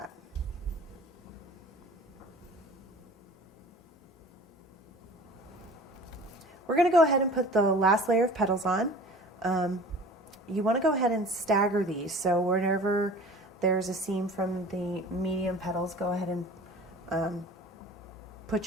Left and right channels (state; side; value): normal; both; correlation 0.42